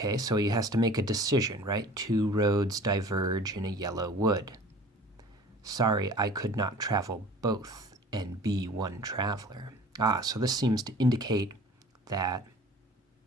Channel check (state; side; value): normal; both; correlation 0.45